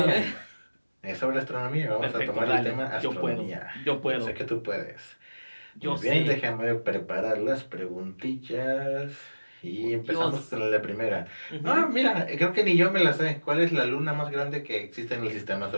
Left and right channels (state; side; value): inverted; both; correlation -1.00